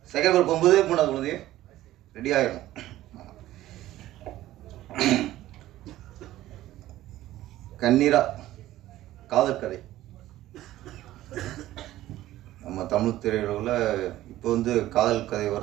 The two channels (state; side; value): quieter; left; 14.9 dB